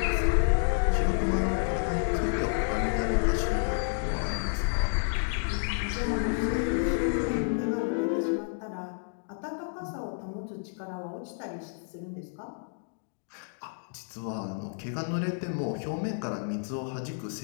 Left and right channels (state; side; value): silent; right; digital silence